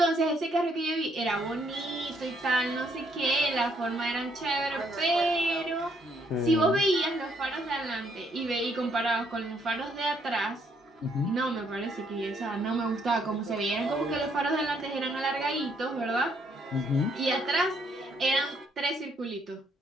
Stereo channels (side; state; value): both; normal; correlation 0.71